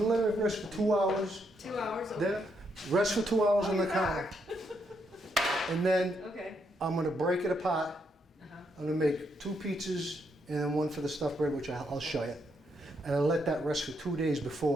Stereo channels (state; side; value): normal; both; correlation 0.77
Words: let it rest for 2 hours. 2 hours? Then, rest for 2 hours on the you're counter. back. And then Okay. I'm gonna break it apart. Uh-huh. I'm gonna make 2 pizzas and then 1 for the stuffed bread, which I'll show you. And I'll let that rest for 2 days